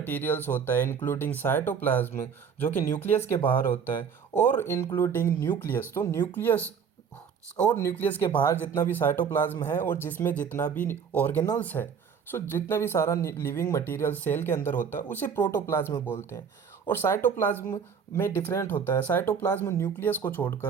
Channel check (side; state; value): left; quieter; 6.8 dB